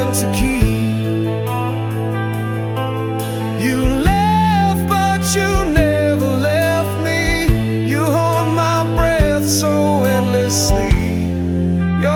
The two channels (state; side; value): identical; both; correlation 1.00